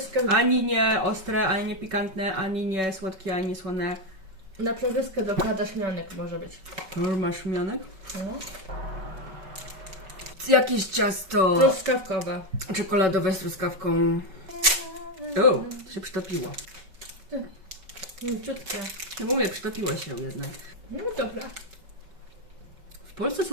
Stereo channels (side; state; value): left; late; 5.3 ms